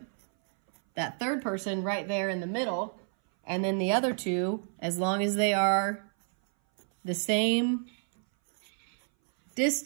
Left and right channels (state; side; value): silent; left; 58 dB below the other